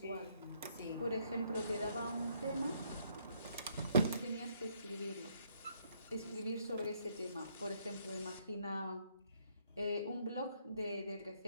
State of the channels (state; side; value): inverted; both; correlation -0.70